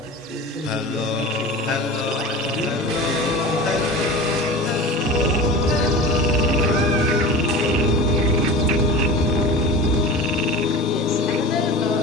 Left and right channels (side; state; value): both; normal; correlation 0.33